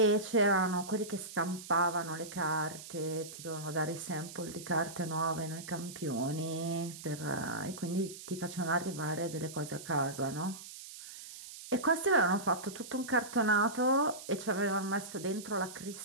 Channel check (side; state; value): right; noise; hiss, 13 dB below the sound